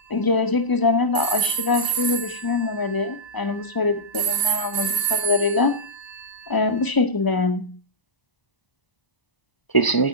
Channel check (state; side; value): late; right; 1.0 ms